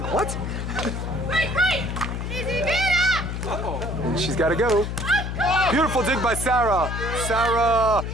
what? And she's got to go. Beautiful dig by Sara. Sara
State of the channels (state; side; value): noise; left; hum, 4 dB below the sound